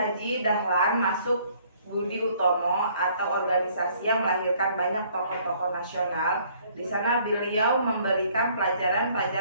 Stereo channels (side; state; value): both; inverted; correlation -0.61